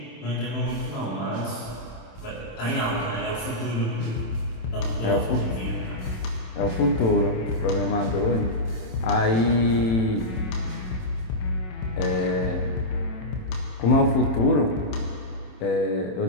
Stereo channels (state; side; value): late; right; 27 ms